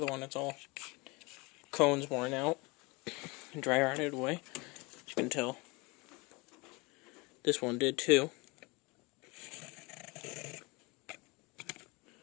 one. It's all cones worn out and dry rotted away. As you can tell, this one did too.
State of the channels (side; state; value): right; quieter; 26.2 dB